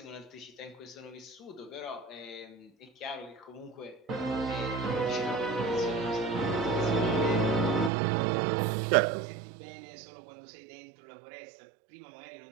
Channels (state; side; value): drops out; left; at 7.9 s